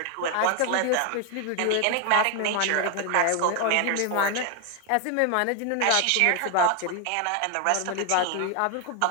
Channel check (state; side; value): different; both; correlation 0.01